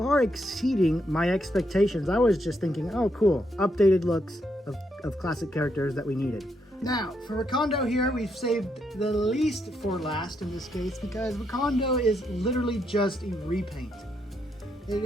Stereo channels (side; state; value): both; normal; correlation 0.78